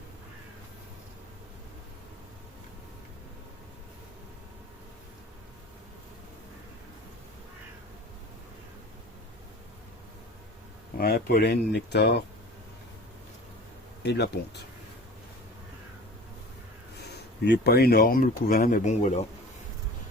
Ouais, pollen, nectar et de la ponte. Il n'est pas énorme le couvain, mais bon voilà.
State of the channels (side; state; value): both; normal; correlation 0.41